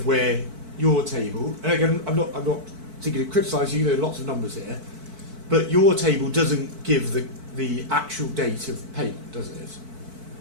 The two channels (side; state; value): left; late; 4.5 ms